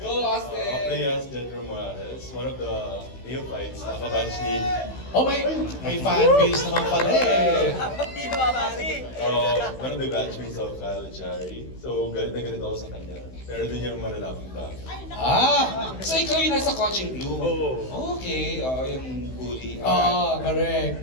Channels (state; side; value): late; right; 16 ms